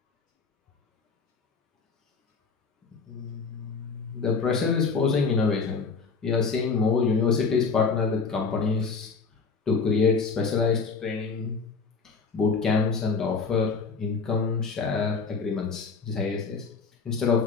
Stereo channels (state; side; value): quieter; right; 4.8 dB